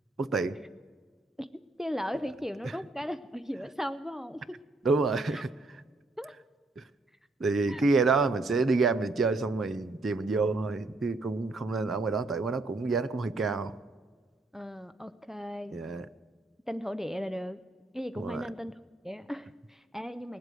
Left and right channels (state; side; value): quieter; left; 3.0 dB